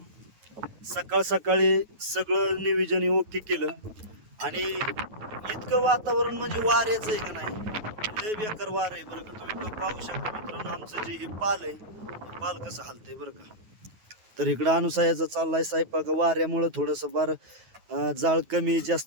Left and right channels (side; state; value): left; late; 9.4 ms